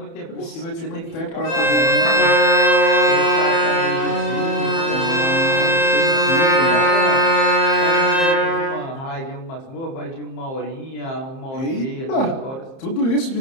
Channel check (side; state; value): right; late; 30 ms